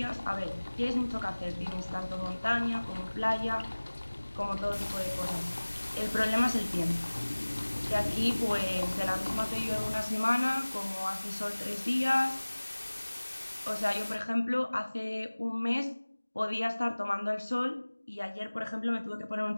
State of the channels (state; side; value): inverted; both; correlation -1.00